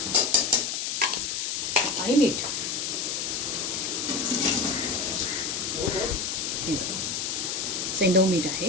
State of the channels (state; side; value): noise; left; hiss, 2 dB below the sound